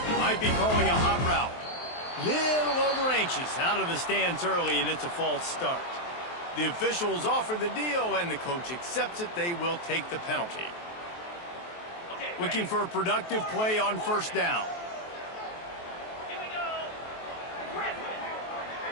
Might be calling a hot route. Little over-anxious out of the stands early, and it's a false start. The officials offer the deal, and the coach accepts it. They will take the penalty. Looking for a productive play on first down.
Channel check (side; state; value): right; late; 23 ms